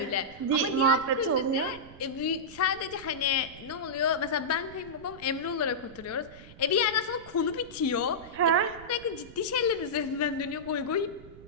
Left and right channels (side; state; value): right; noise; rumble, 19 dB below the sound